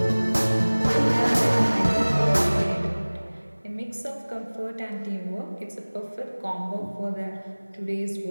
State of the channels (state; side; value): inverted; both; correlation -1.00